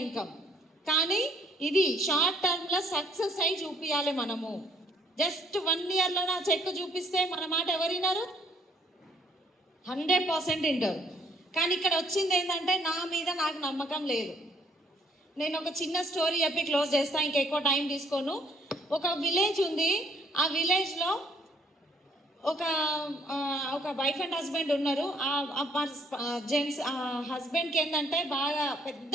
ఇన్కమ్. కానీ ఇది షార్ట్ టర్మ్లో సక్సెస్ అయి చూపించాలి మనము. జస్ట్ 1 yearలో నా చెక్ చూపిస్తే మన మాట ఎవరు విన్నారు? 100% వింటారు. కానీ ఇక్కడ వచ్చింది ఏంటంటే నా మీద నాకు నమ్మకం లేదు. నేను ఒక చిన్న స్టోరీ చెప్పి క్లోజ్ చేస్తాను, ఇంకెక్కువ టైం తీసుకోను. ఒక విలేజ్ ఉంది. ఆ విలేజ్లో ఒక వైఫ్ అండ్ హస్బెండ్ ఉన్నారు. జెంట్స్ హస్బెండ్కి ఏంటంటే బాగా పెద్ద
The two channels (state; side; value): normal; both; correlation 0.64